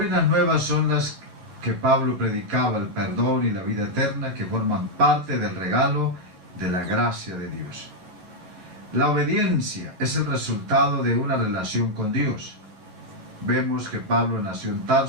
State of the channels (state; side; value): late; left; 11 ms